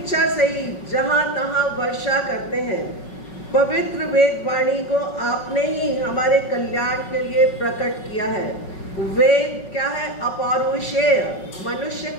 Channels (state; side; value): late; right; 5.4 ms